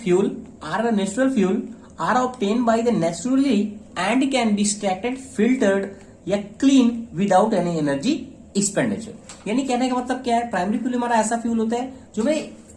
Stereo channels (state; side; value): identical; both; correlation 1.00